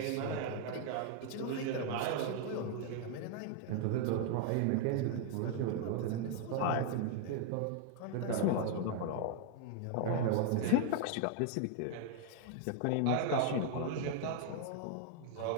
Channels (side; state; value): both; different; correlation 0.00